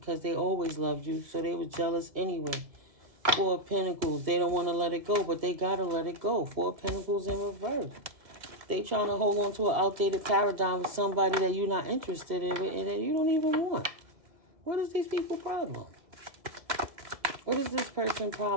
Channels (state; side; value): late; left; 1.9 ms